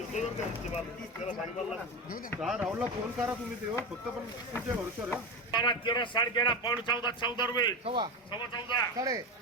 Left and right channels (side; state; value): both; normal; correlation 0.19